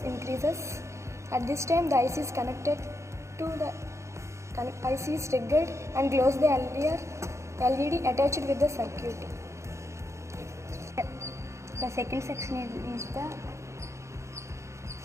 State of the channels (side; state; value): left; late; 0.14 ms